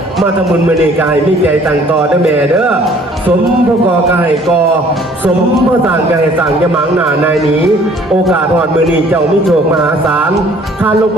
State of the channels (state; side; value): normal; both; correlation 0.56